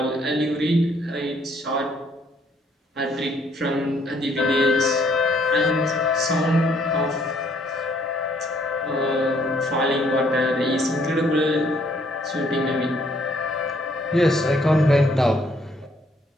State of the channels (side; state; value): both; normal; correlation 0.66